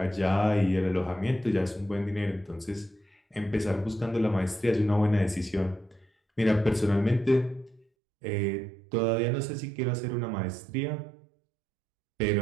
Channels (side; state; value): left; drops out; at 7.9 s